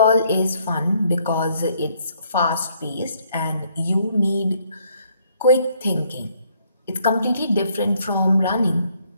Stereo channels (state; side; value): inverted; both; correlation -0.67